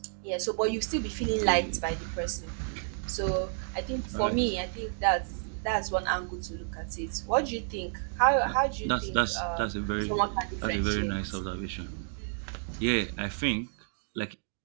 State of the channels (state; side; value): silent; left; digital silence